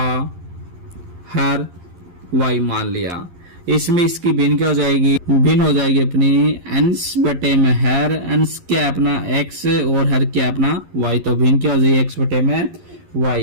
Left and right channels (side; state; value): left; late; 11 ms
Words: हर y मान लिया। इसमें इसकी भिन्न क्या हो जाएगी? भिन्न हो जाएगी अपनी अंश बटे में हर। अंश क्या अपना x और हर क्या अपना y, तो भिन्न क्या हो जाएगी? x बटे में